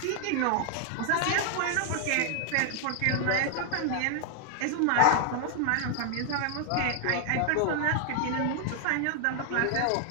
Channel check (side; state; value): both; different; correlation 0.00